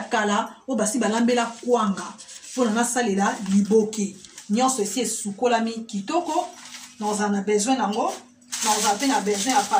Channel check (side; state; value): both; identical; correlation 1.00